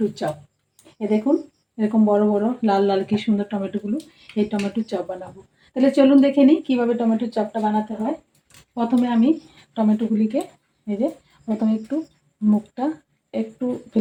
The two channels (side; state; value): both; identical; correlation 1.00